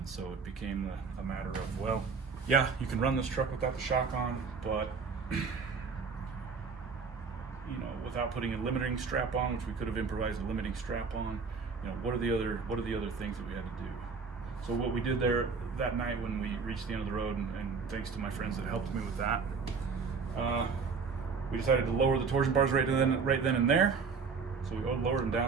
so it became a matter of, well, yeah, you can run this truck without the shock on, but you know, without putting a limiting strap on, which we could have improvised a limiting strap on. You know, what are the other things that we had to do? So what we did there that night when we reached the end of the road, and thanks to my friends that helped me with that, we decided to lower the torsion bars right then and there. So we lowered them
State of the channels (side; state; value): left; quieter; 5.2 dB